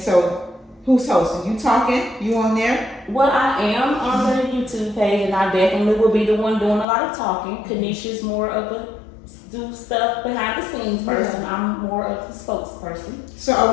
who's hosting? You talking? You on there? Well, I am on the YouTube page, and I definitely will be the one doing a lot of talking. Kanisha's more of a do stuff behind the scenes person. I'm more of the spokesperson. So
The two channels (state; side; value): drops out; right; at 6.9 s